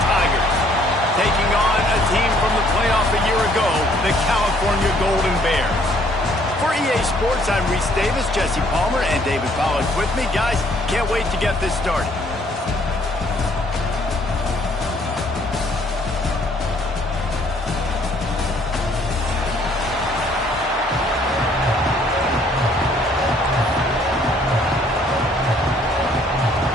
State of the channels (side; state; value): both; normal; correlation 0.63